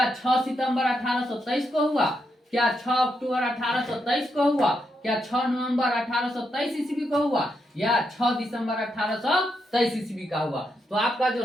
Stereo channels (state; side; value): normal; both; correlation 0.82